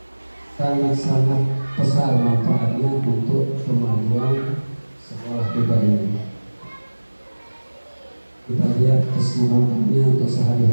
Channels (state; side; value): inverted; both; correlation -1.00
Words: sangat-sangat besar manfaatnya untuk kemajuan sekolah kita ini. Kita lihat keseluruhannya untuk